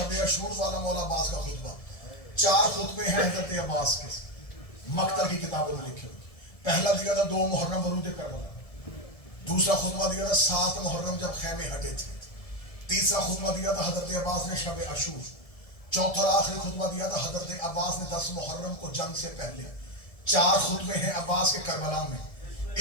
عاشور والا مولا عباس کا خطبہ. 4 خطبے ہیں حضرت عباس کے مقتل کی کتابوں میں لکھے ہوئے. پہلا دیا تھا 2 محرم ورود کربلا، دوسرا خطبہ دیا تھا 7 محرم جب خیمے ہٹے تھے، تیسرا خطبہ دیا تھا حضرت عباس نے شب عاشور، چوتھا اور آخری خطبہ دیا تھا حضرت عباس نے 10 محرم کو جنگ سے پہلے. 4 خطبے ہیں عباس کے کربلا میں.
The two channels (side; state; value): right; late; 1.7 ms